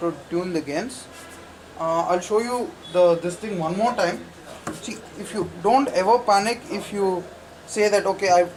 tune the gains. I'll show you this thing one more time. See, if you don't ever panic if you say that okay, I've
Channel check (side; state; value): both; identical; correlation 1.00